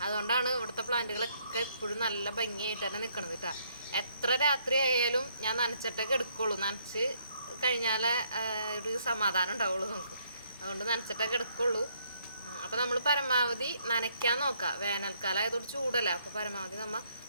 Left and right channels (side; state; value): both; inverted; correlation -0.70